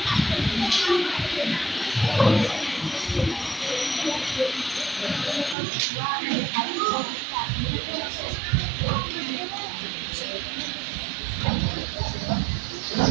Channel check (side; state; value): left; drops out; at 5.6 s